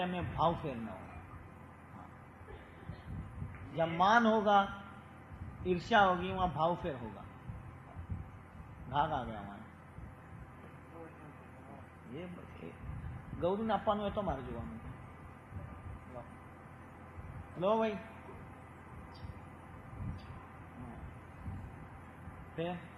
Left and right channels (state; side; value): identical; both; correlation 1.00